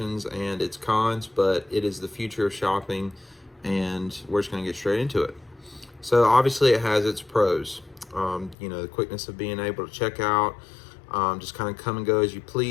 and its cons, but it is the future of shopping, and we're just going to get straight into it. So obviously it has its pros. The quickness of being able to check out, just kind of come and go as you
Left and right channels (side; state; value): right; drops out; at 8.6 s